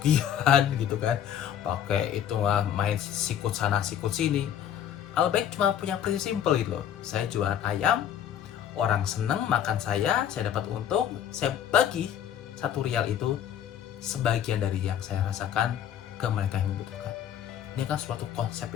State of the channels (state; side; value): quieter; right; 9.8 dB